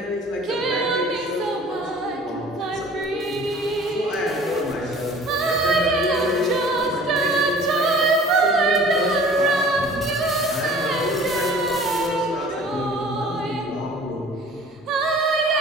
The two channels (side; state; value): both; normal; correlation 0.47